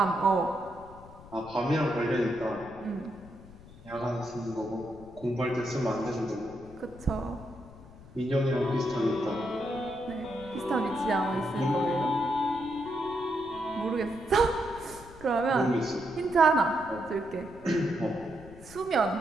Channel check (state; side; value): noise; left; rumble, 19 dB below the sound